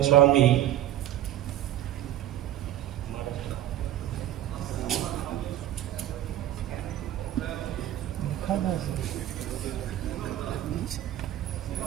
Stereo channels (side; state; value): left; quieter; 12.9 dB